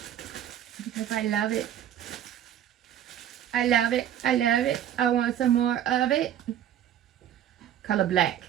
because I love it. I love it. I love it. I want some more of it. Color black.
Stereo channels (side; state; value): left; quieter; 10.7 dB